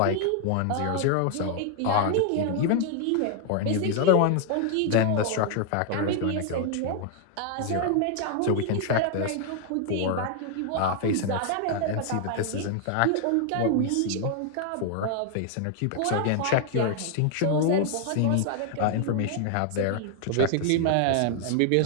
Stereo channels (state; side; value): different; both; correlation 0.00